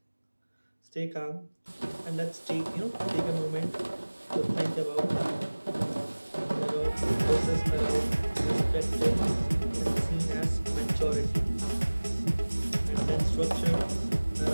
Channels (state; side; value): inverted; both; correlation -1.00